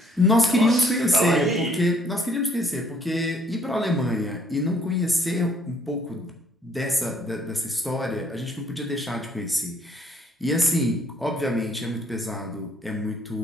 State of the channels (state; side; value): normal; both; correlation 0.64